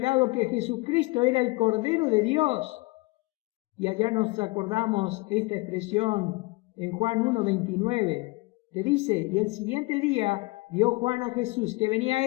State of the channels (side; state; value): right; quieter; 23.9 dB